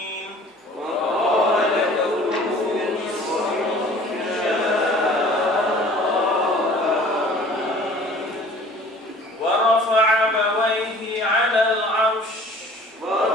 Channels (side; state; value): both; normal; correlation 0.49